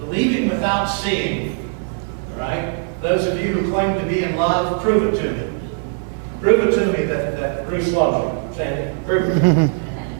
Believing without seeing. All right? Those of you who claim to be in love, prove it to me. Prove it to me that Bruce loves you. Say it. Prove it.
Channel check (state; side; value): silent; left; digital silence